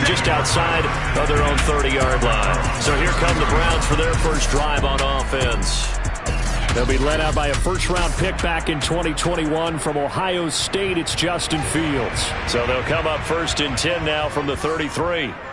just outside of their own 30-yard line. So here come the Browns for their first drive on offense. They'll be led out by a first-round pick back in 2021 from Ohio State. It's Justin Fields. So they'll come up first and 10 now from the 33.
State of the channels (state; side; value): identical; both; correlation 1.00